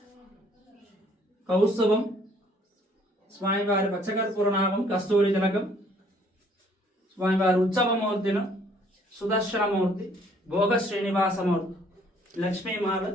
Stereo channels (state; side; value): normal; both; correlation 0.61